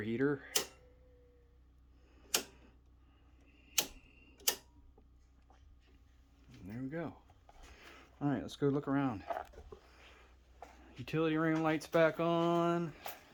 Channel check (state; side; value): identical; both; correlation 1.00